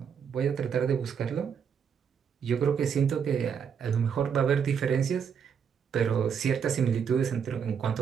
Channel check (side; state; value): left; quieter; 7.2 dB